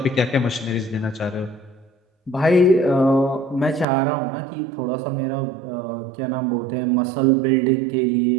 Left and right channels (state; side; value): drops out; left; at 3.9 s